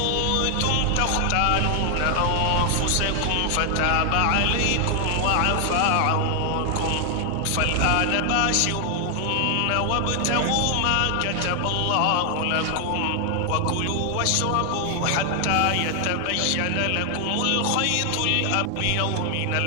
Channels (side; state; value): both; different; correlation 0.00